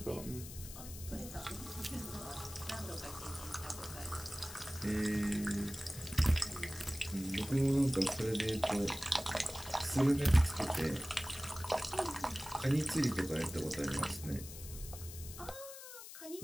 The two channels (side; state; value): left; noise; hiss, 13 dB below the sound